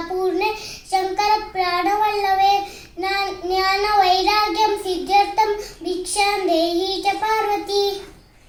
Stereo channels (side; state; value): both; identical; correlation 1.00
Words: ಪೂರ್ಣೆ ಶಂಕರ ಪ್ರಾಣವಲ್ಲವೇ, ಜ್ಞಾನ ವೈರಾಗ್ಯಂ ಸಿದ್ಧಾರ್ಥಂ ಭಿಕ್ಷಾಂ ದೇಹಿ ಚ ಪಾರ್ವತಿ.